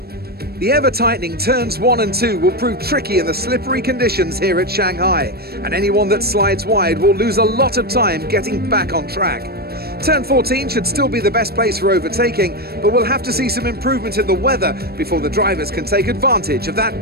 The ever-tightening turns 1 and 2 will prove tricky in the slippery conditions here at Shanghai, and anyone that slides wide will lose a lot of time getting back on track. Turn 14 should still be the best place for overtaking, but we'll have to see some improvement in the weather before the drivers can take advantage of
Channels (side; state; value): left; late; 0.46 ms